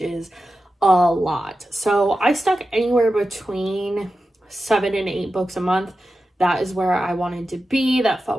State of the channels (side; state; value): both; normal; correlation 0.92